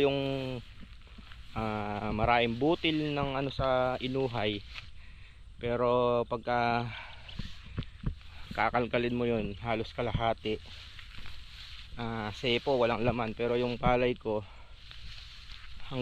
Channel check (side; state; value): both; identical; correlation 1.00